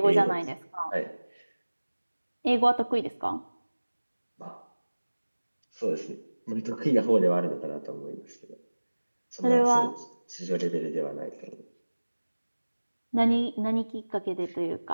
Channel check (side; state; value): both; inverted; correlation -1.00